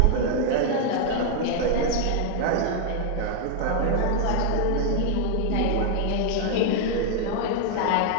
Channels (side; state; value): both; different; correlation 0.00